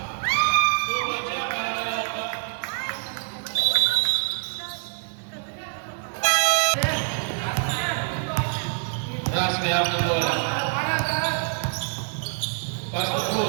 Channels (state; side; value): silent; left; digital silence